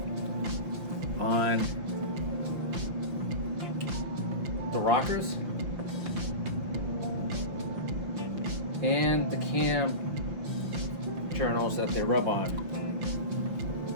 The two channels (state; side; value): late; left; 5.7 ms